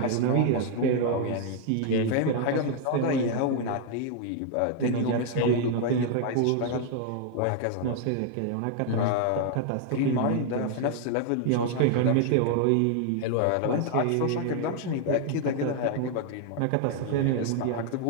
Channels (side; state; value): both; different; correlation 0.00